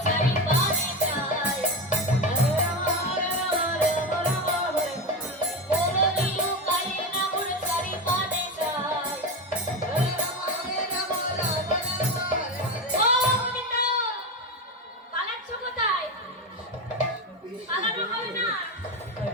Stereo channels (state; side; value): normal; both; correlation 0.19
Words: চারি পানে যায়, মোরলি লোকারে নগর চারি পানে যায়। হরে রাম রাম হরে ও গোবিন্দ, পালাচ্ছ কোথায়? পালানো হবে না,